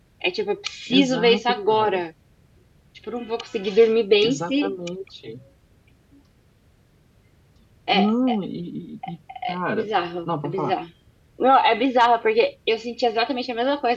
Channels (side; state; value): both; identical; correlation 1.00